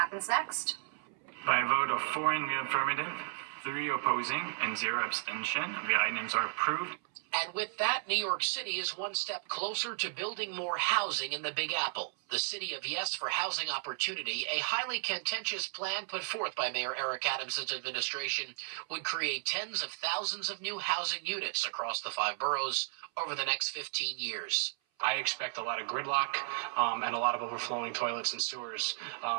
next. By a vote of 4 in the affirmative, 3 opposing, and 0 abstention, the items are approved. And with that, New York City is one step closer to building more housing in the Big Apple. The City of Yes for Housing Opportunity, a highly contentious plan put forth by Mayor Eric Adams' administration, would create tens of thousands of new housing units across the 5 boroughs over the next 15 years. I expect a lot of gridlock and a lot of overflowing toilets and sewers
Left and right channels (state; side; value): silent; left; 55 dB below the other